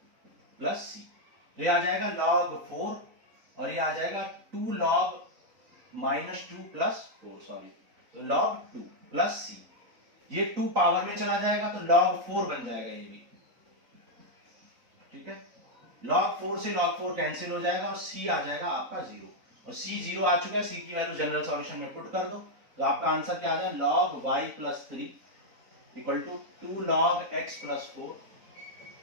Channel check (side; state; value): left; late; 3.9 ms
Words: प्लस c, तो ये आ जाएगा log 4, और ये आ जाएगा 2 log -2 प्लस 4, सॉरी, तो log 2 प्लस c, ये 2 पावर में चला जाएगा तो log 4 बन जाएगा ये भी। ठीक है, log 4 से log 4 कैंसिल हो जाएगा और c आ जाएगा आपका 0, और c 0 आ चुका है, c की वैल्यू जनरल सॉल्यूशन में पुट कर दो, तो आपका आंसर क्या आ जाएगा log y +3 equal to 2 log x +4।